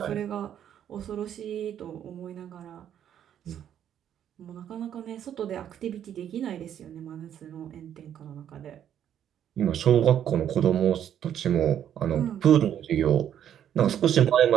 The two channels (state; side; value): quieter; left; 9.9 dB